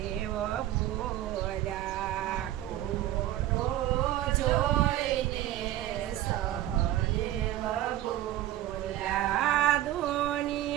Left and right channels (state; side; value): quieter; left; 13.7 dB